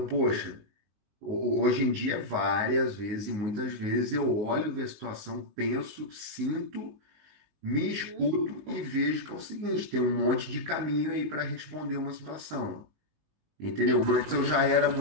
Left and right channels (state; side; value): late; left; 19 ms